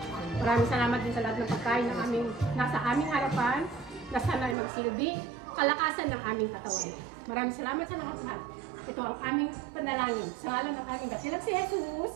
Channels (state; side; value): drops out; left; at 4.5 s